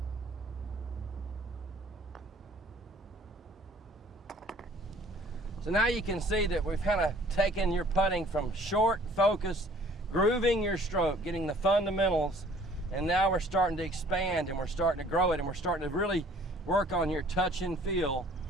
So now you can see that we've kind of taken your putting from short focus, grooving your stroke, getting the fundamentals, and now we're starting to expand and we're starting to grow it, and we're starting to really work on your touch and feel.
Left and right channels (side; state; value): both; normal; correlation 0.54